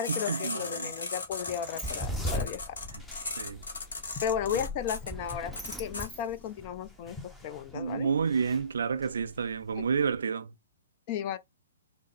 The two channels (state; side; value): inverted; both; correlation -0.44